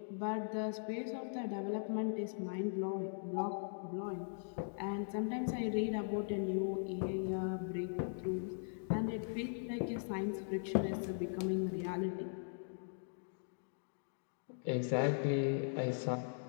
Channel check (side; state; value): right; silent; digital silence